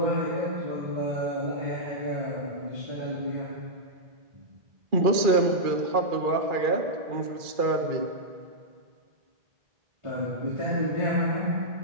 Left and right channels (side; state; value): left; late; 2.4 ms